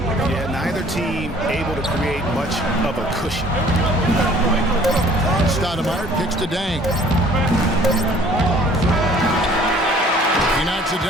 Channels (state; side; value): normal; both; correlation 0.54